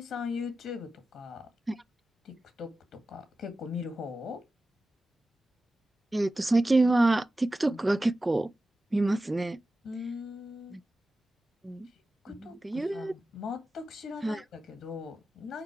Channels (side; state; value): both; normal; correlation 0.94